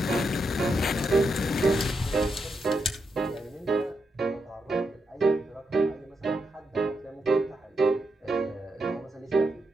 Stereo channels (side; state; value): both; normal; correlation 0.83